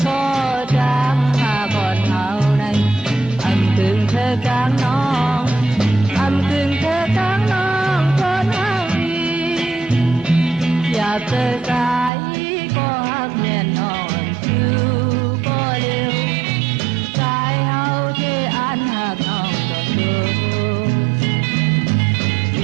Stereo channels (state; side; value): drops out; left; at 12.1 s